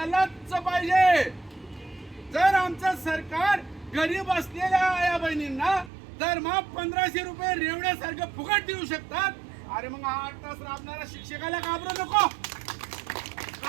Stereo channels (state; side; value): drops out; left; at 5.9 s